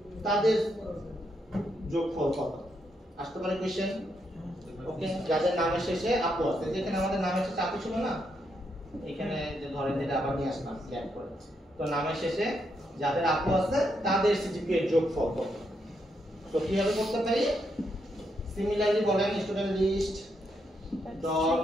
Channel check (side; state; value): both; normal; correlation 0.79